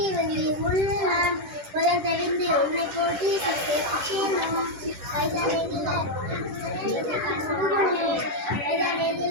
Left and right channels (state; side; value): late; left; 10 ms